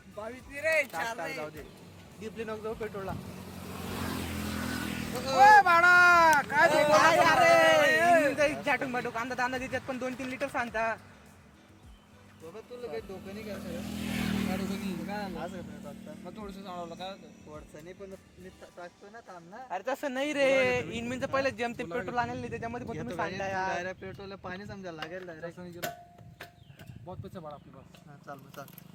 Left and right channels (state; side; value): identical; both; correlation 1.00